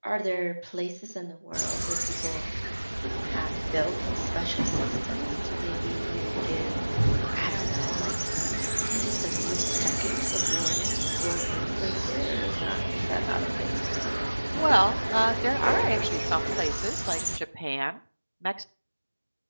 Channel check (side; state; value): both; inverted; correlation -1.00